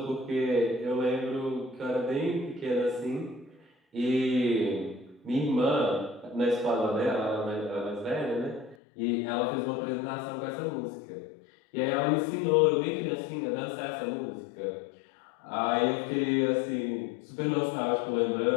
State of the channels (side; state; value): right; drops out; at 8.8 s